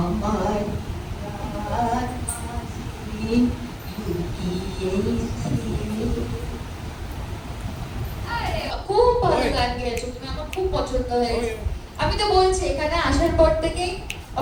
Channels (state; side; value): identical; both; correlation 1.00